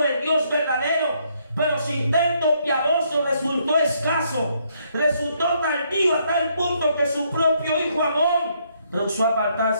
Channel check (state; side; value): inverted; both; correlation -0.71